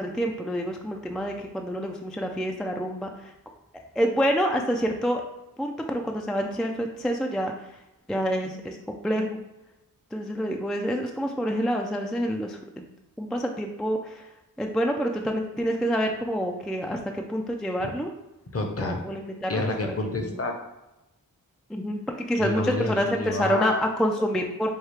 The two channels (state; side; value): normal; both; correlation 0.73